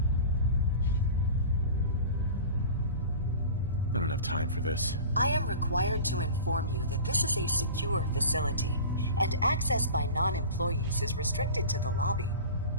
I don't have time for this. I am required to inform you that this is a secure facility, and access by non-employees is restricted to the lobby.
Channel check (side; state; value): both; inverted; correlation -0.36